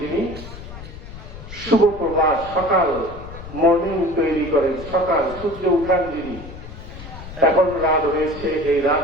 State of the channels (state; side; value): noise; left; rumble, 13 dB below the sound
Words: যিনি শুভ প্রভাত, সকাল, মর্নিং তৈরি করেন, সকাল সূর্য উঠান যিনি। এখন রাত হয়েছে, এই রাত